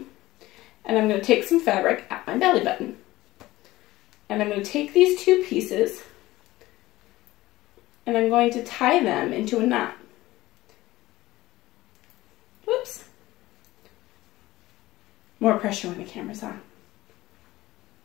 and I'm going to take some fabric at my belly button. And I'm going to take these 2 pieces, and I'm going to tie them into a knot. Whoops. More pressure when the camera's on.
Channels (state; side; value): quieter; right; 17.6 dB